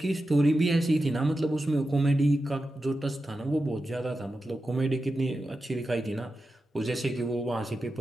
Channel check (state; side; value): normal; both; correlation 0.91